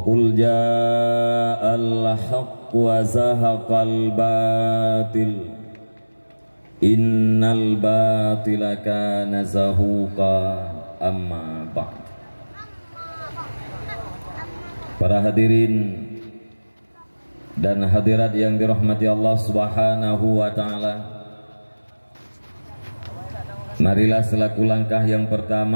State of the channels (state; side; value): inverted; both; correlation -1.00